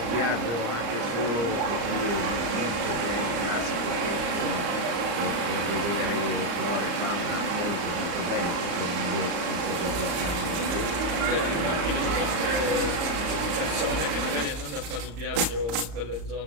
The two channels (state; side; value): late; left; 35 ms